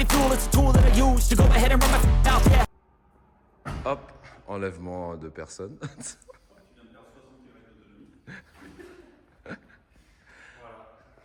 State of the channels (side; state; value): both; identical; correlation 1.00